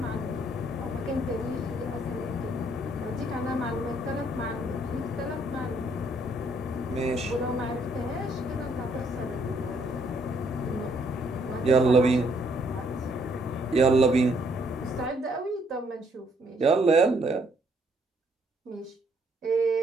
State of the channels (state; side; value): normal; both; correlation 0.68